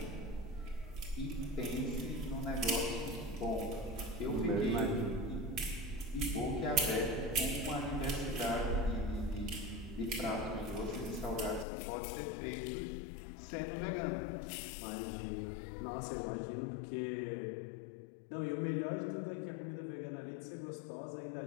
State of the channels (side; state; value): right; drops out; at 11.7 s